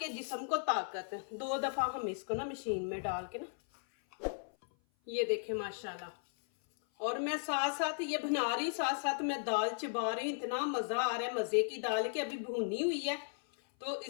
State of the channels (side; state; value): right; silent; 54 dB below the other